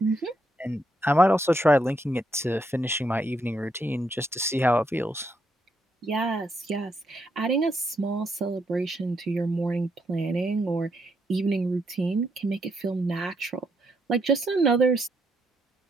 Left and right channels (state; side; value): normal; both; correlation 0.77